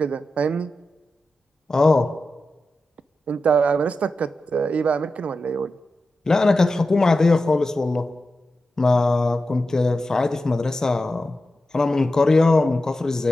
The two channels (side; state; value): both; normal; correlation 0.91